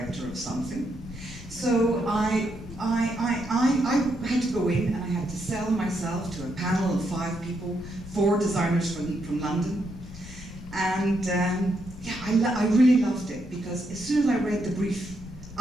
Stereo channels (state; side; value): normal; both; correlation 0.79